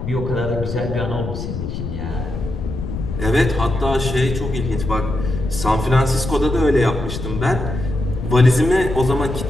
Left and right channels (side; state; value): left; noise; rumble, 5 dB below the sound